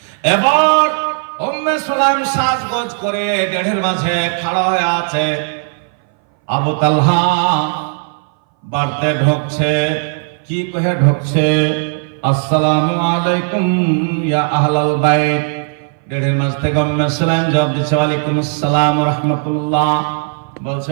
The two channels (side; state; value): left; silent; 60 dB below the other